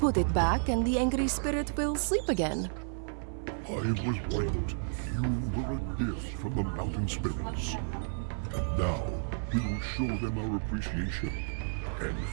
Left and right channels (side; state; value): left; silent; 57 dB below the other